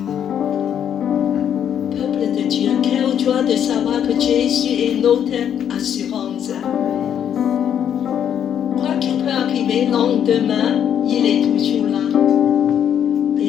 Peuple de Dieu, quelle joie de savoir que Jésus est notre assurance. Quoi qu'il peut arriver le lendemain, il est toujours là.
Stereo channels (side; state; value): right; quieter; 9.2 dB